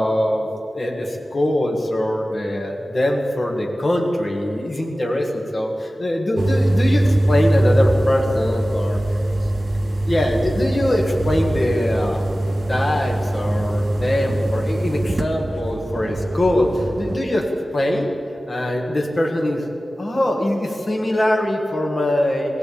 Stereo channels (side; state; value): both; normal; correlation 0.96